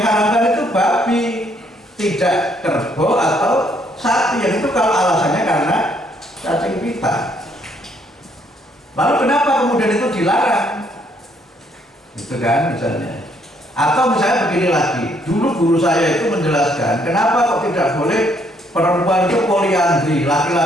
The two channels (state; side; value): normal; both; correlation 0.68